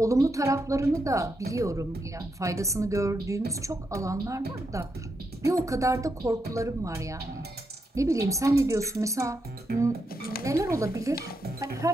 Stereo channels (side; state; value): both; normal; correlation 0.83